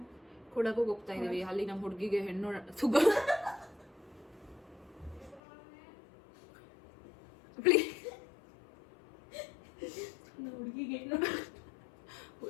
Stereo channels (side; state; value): right; drops out; at 5.4 s